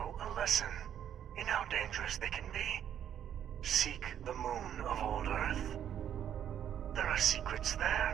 a lesson in how dangerous they can be. Seek the moon of old Earth. There are secrets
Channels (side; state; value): left; quieter; 9.8 dB